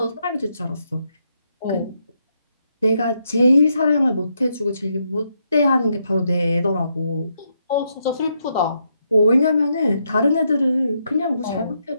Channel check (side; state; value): both; inverted; correlation -0.79